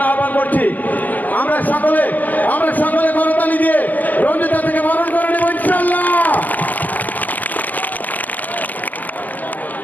আহ্বান করছি। আমরা সকলে করতালি দিয়ে রঞ্জু দাদাকে বরণ করে নেব ইনশাআল্লাহ।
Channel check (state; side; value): late; right; 0.082 ms